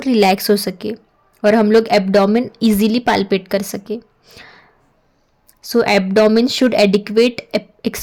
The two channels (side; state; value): both; identical; correlation 1.00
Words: रिलैक्स हो सके और हम लोग एब्डोमिन इजीली पाल्पेट कर सके. So abdomen should adequate